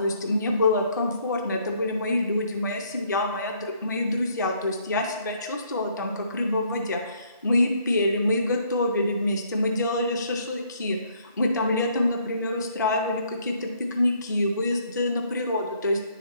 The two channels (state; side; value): inverted; both; correlation -0.66